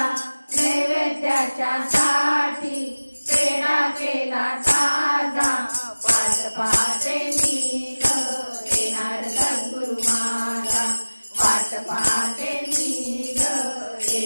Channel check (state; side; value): inverted; both; correlation -1.00